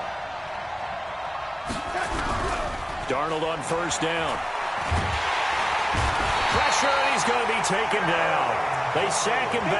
Darnold on first down. Pressure, and he's going to be taken down. They sack him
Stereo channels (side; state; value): both; identical; correlation 1.00